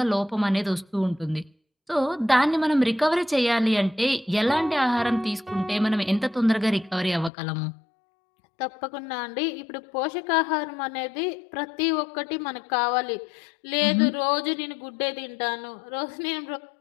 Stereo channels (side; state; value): right; drops out; at 7.3 s